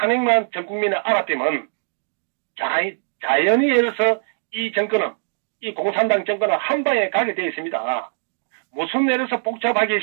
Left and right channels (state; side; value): silent; left; digital silence